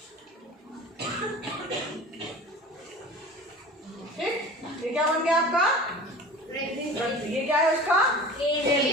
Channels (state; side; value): normal; both; correlation 0.39